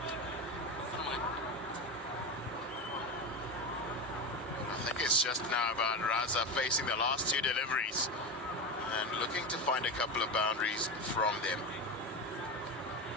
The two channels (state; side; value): normal; both; correlation 0.19